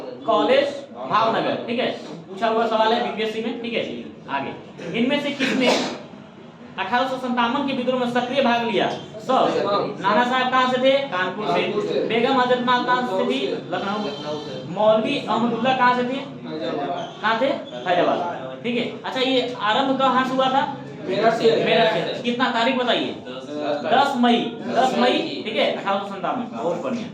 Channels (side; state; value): both; identical; correlation 1.00